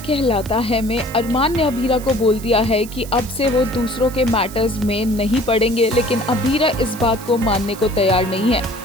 है में अरमान ने अभीरा को बोल दिया है कि अब से वो दूसरों के मैटर्स में नहीं पड़ेंगे, लेकिन अभीरा इस बात को मानने को तैयार नहीं है।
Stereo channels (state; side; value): noise; right; hiss, 16 dB below the sound